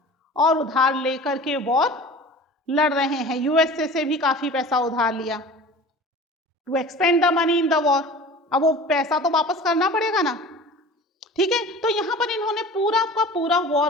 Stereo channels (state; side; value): normal; both; correlation 0.40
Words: और उधार लेकर के वॉर लड़ रहे हैं। यूएसए से भी काफी पैसा उधार लिया to expend the money in the war. अब वो पैसा तो वापस करना पड़ेगा ना, ठीक है? तो यहां पर इन्होंने पूरा का पूरा